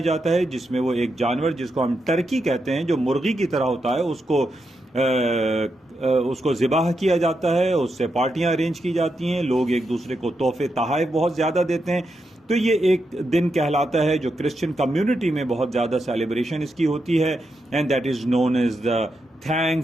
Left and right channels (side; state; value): both; normal; correlation 0.85